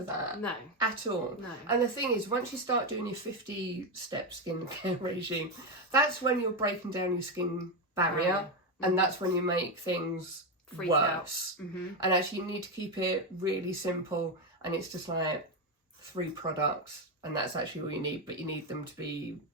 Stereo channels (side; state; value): both; normal; correlation 0.09